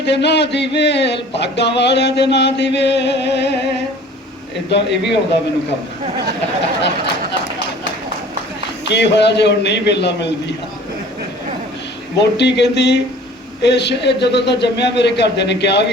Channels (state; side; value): normal; both; correlation 0.48